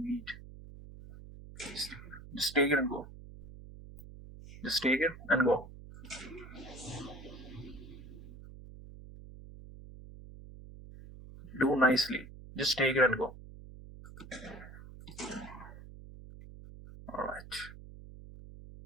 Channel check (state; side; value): noise; right; hum, 15 dB below the sound